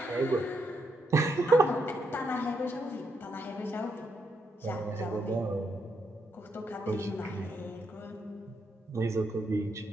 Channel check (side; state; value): both; normal; correlation 0.78